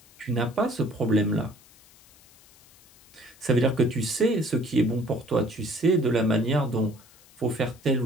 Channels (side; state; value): left; noise; hiss, 27 dB below the sound